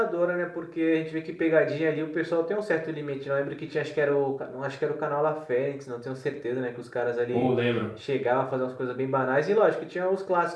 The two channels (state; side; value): identical; both; correlation 1.00